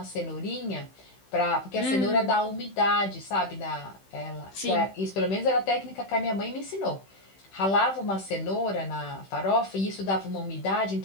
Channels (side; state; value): right; late; 15 ms